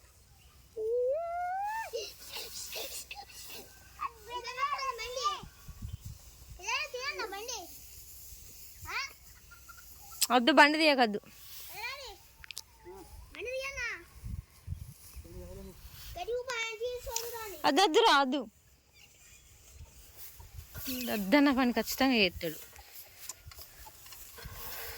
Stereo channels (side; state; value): both; identical; correlation 1.00